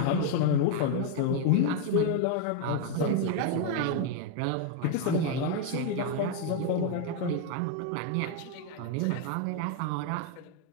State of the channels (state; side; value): different; both; correlation 0.01